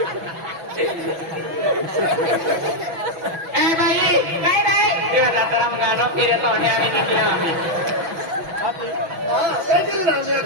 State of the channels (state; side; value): late; left; 6.1 ms